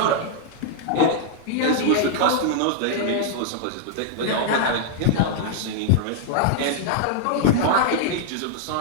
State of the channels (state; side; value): different; both; correlation 0.00